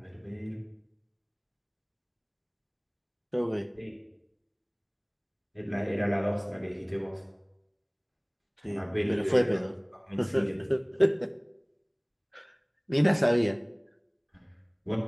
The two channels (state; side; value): identical; both; correlation 1.00